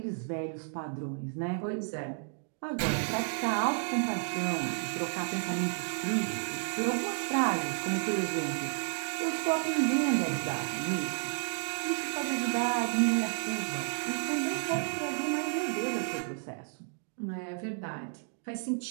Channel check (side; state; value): left; silent; digital silence